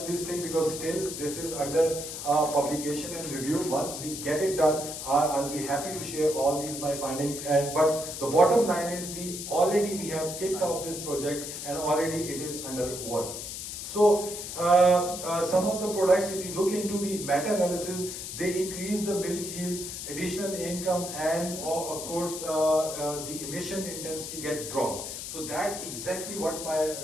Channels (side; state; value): left; noise; hiss, 7 dB below the sound